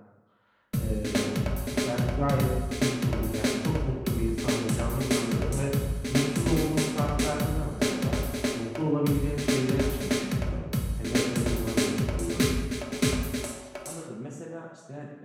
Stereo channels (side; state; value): both; identical; correlation 1.00